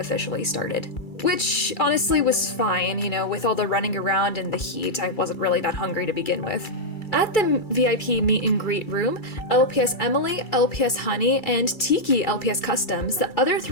started. Which honestly was fine, you know, with all the running around and the heat, I wasn't really that hungry to begin with. At the VIP meet and greet room, LPS Emily, LPS Honey, and Tiki LPS Customs, the other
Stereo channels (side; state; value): right; late; 2.3 ms